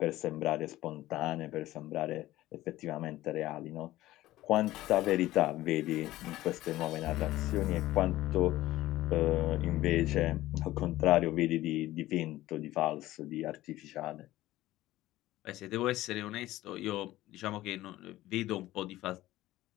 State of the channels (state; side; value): quieter; right; 16.0 dB